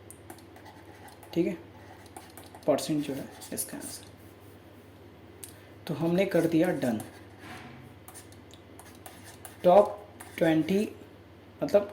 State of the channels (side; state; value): both; identical; correlation 1.00